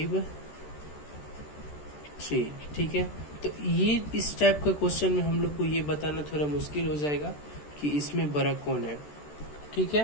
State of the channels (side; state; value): right; late; 13 ms